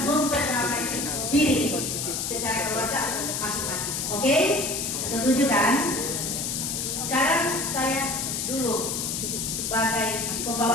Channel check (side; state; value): left; noise; hiss, 2 dB below the sound